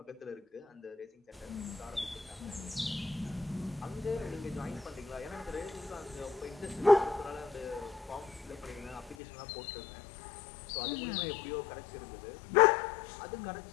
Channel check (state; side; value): drops out; right; at 9.2 s